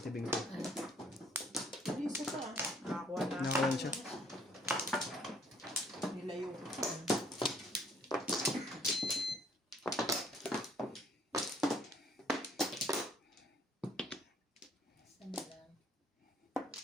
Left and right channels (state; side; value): normal; both; correlation 0.62